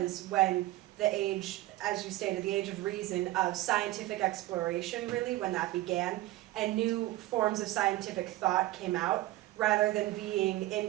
when the age, as you stated, the age of reason, of scientific exploration, really, when that began, and new forms of scientific thought came out. Rather than being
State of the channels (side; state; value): left; quieter; 17.0 dB